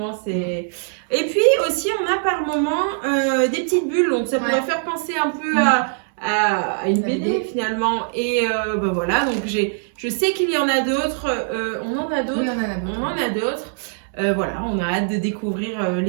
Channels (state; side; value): silent; left; digital silence